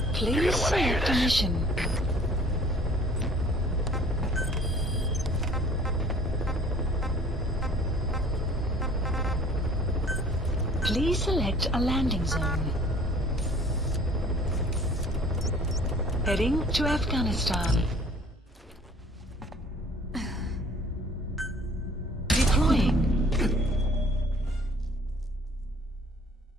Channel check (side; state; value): both; normal; correlation 0.53